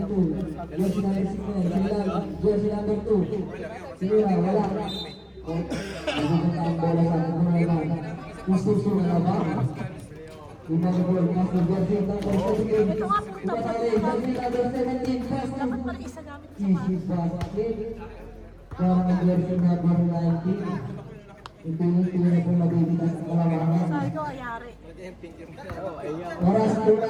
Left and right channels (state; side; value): identical; both; correlation 1.00